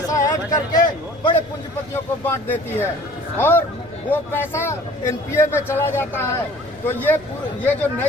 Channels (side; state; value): left; noise; rumble, 24 dB below the sound